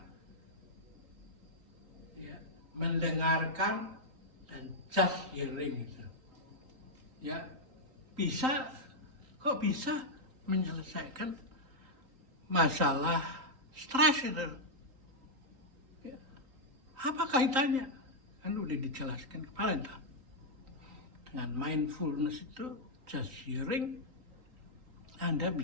mendengarkan dan just hearing itu. Ya, kok bisa menyelesaikan masalah stres itu. Ya. Apa kaitannya? Kan udah dijelaskan kemarin tak? Dengan mindfulness itu just hearing, Anda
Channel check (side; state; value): left; late; 3.8 ms